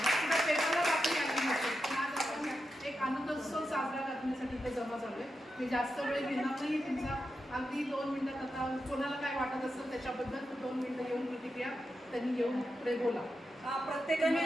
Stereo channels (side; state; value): both; normal; correlation 0.88